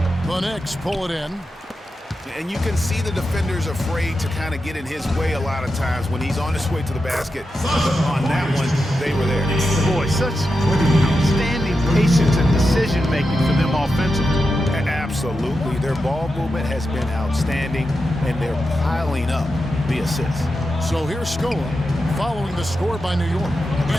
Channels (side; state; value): both; normal; correlation 0.88